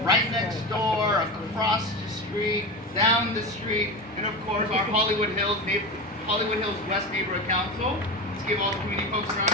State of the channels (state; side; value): normal; both; correlation 0.23